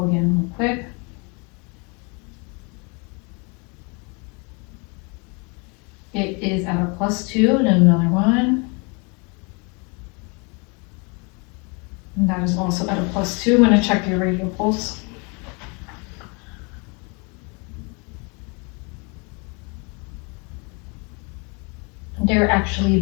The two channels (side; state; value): right; quieter; 31.9 dB